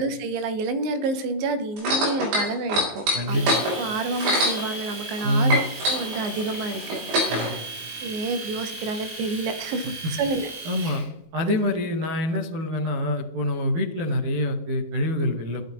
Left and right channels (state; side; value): late; left; 19 ms